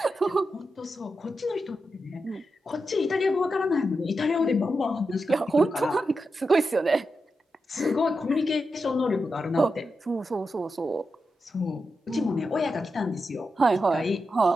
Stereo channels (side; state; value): both; normal; correlation 0.88